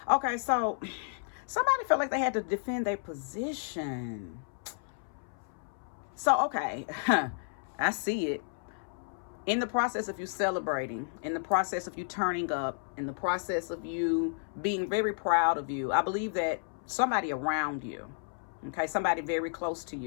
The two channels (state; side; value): silent; right; 56 dB below the other